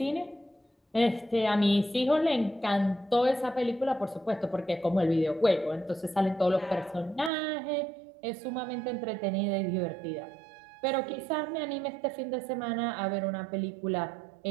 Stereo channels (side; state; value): left; drops out; at 7.3 s